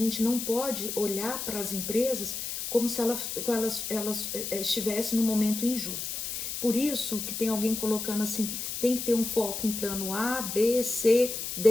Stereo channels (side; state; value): left; noise; hiss, 5 dB below the sound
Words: não pode olhar para as empresas como se elas estivessem num momento injusto. Por isso que tem alguém colocando assim, tem que ter um foco em plano A, B, C,